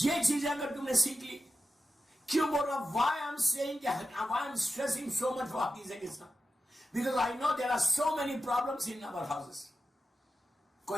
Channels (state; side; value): normal; both; correlation 0.92